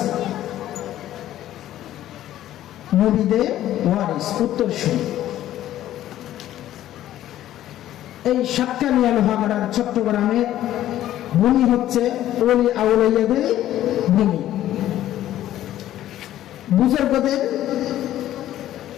নবীদের ওয়ারিস, উত্তরসূরি। এই সাতকানিয়া লোহাগাড়ার চট্টগ্রামের ভূমি হচ্ছে ওলি আউলিয়াদের ভূমি, বুজুর্গদের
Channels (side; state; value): right; quieter; 13.0 dB